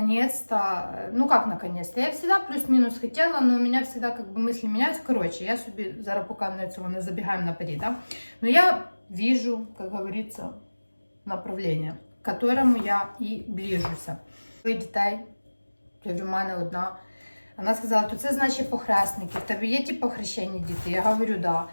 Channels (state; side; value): inverted; both; correlation -1.00